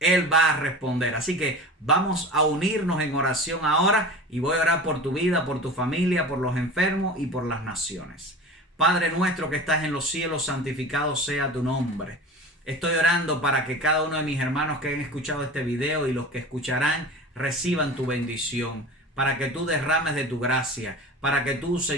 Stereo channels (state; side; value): normal; both; correlation 0.35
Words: va a responder. Así que vamos a unirnos en oración ahora y voy a orar por tu vida, por tu familia, por los enfermos y por las naciones. Padre nuestro que estás en los cielos, santificado sea tu nombre. Estoy orando para que cada uno de mis hermanos que han escuchado este video y los que escucharán reciban tu bendición, para que tú derrames de tu gracia, para que tú,